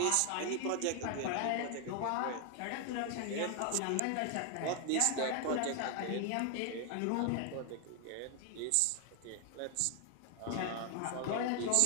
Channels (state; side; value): different; both; correlation 0.00